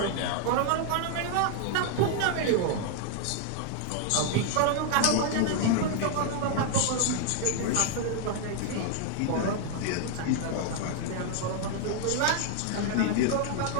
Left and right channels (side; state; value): both; different; correlation 0.00